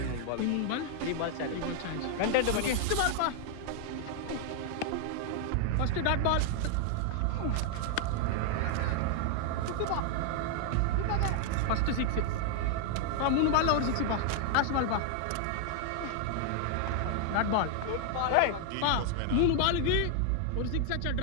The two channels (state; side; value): different; both; correlation 0.00